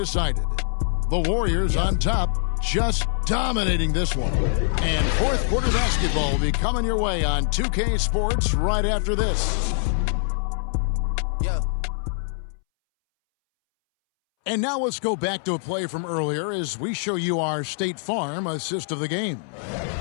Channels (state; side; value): silent; right; 63 dB below the other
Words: The Warriors on top, just dominating this one. And fourth quarter basketball will be coming your way on 2K Sports right after this. And now let's go back to a play from earlier as we show you our State Farm assist of the game.